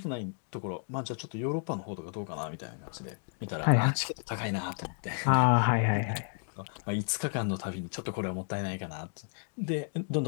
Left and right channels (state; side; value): silent; right; 56 dB below the other